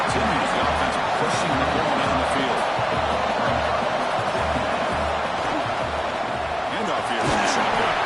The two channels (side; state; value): both; identical; correlation 1.00